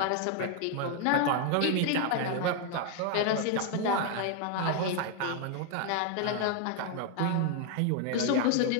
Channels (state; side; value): different; both; correlation 0.00